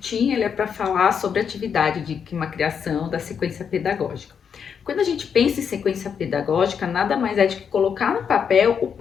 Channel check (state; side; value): quieter; right; 7.1 dB